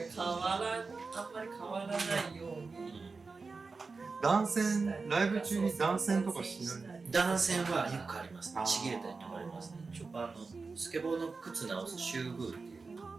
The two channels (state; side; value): quieter; left; 4.3 dB